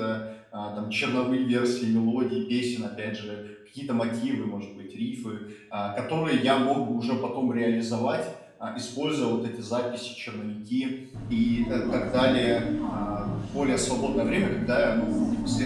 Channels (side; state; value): both; identical; correlation 1.00